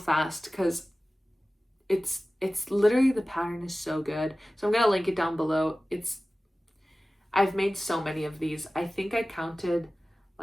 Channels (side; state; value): both; normal; correlation 0.97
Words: because it's literally, the pattern is so good. So I'm gonna link it down below. I've made so many of these. I think I counted